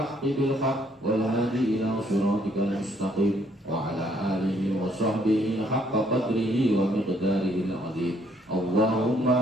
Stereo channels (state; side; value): normal; both; correlation 0.67